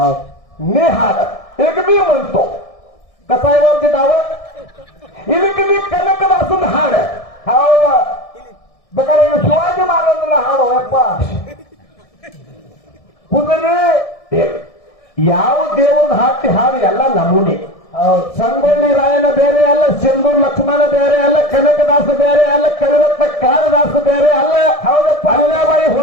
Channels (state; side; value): late; right; 1.6 ms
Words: ನೀ ಹಾಡ ಈಗ ನೀ ಬಂತು ಕಸಾಯವಾದ ನಾವ ಇದಕ್ಕೆ ನೀ ಕನಕದಾಸನ ಹಾಡ ಹೌದ ಬೇಕಾದ್ರೆ ಶಿವಾಜಿ ಮಹಾರಾಜನ ಹಾಡು ಯಪ್ಪ ಕುಂದ್ರಿ ಯಾವ ದೇವ್ರನ್ನ ಹಾಕಿ ಹಾಡು ಎಲ್ಲ ನಮೂನಿ ಸಂಗೊಳ್ಳಿ ರಾಯನ ಬೇರೆ ಅಲ್ಲ ಸಿಂಧೂರ್ ಲಕ್ಷ್ಮಣ ಬೇರೆ ಅಲ್ಲ ಕನಕದಾಸ ಬೇರೆ ಅಲ್ಲ ಕವಿರತ್ನ ಕಾಳಿದಾಸ ಬೇರೆ ಅಲ್ಲ ಹೌದಪ್ಪ ಅಲ್ಲಾಬಾಯಿ